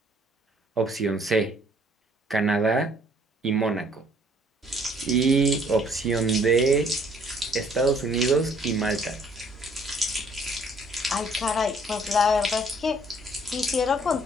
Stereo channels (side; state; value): both; normal; correlation 0.61